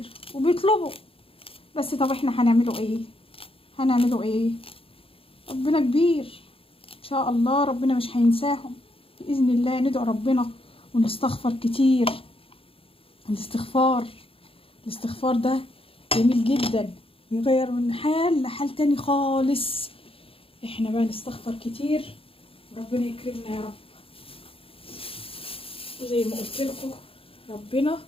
وبيطلبوا، بس طب احنا هنعمله ايه؟ ربنا كبير ان شاء الله، ربنا مش هينساهم باذن الله. ندعو ربنا ونستغفر كتير. الاستغفار ده جميل جدا، بيغير من حال لحال تاني خالص. احنا بقى نستغفر كتير، ربنا يكرمنا يا رب. وزي ما قلت لكم ربنا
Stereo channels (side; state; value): right; late; 0.27 ms